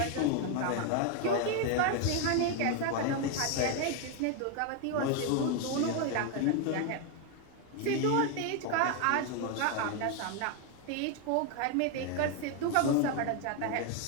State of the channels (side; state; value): both; different; correlation 0.01